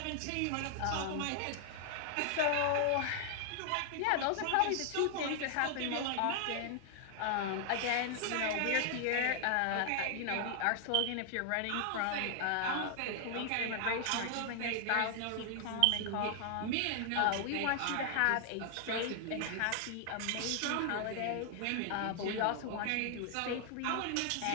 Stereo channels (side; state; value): both; different; correlation 0.00